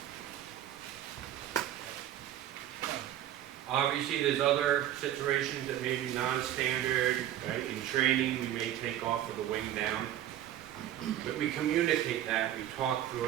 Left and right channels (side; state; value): left; quieter; 12.0 dB